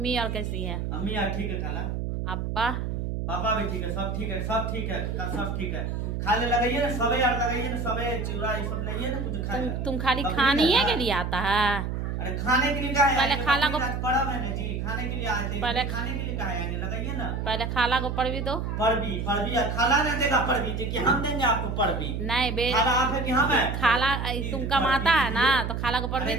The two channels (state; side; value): noise; right; hum, 3 dB below the sound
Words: और कैसी है? अम्मी यार ठीक है खाला। अब्बा? पापा भी ठीक है, सब ठीक है, सब ठीक है, सब ठीक है। खाने लगाइए ना, सबे यार लगाइए ना, सबे चूड़ा ये सब लाइए ना कुछ खाए। तुम खाली खाने के लिए आता है? अरे खाने के लिए कहा है? पहले खाला को पड़ा है ना जी, खाने के लिए आए थे। पहले खाने के लिए कहा है, लगाइए ना। पहले खाला को पढ़ भी दो। पढ़ भी खाला नहीं देगा पढ़ भी कि हम देंगे आपको पढ़ भी। नहीं बे, खाला आप है कि हम है? खाला तुम कमाता है ना, तो खाला को पढ़ भी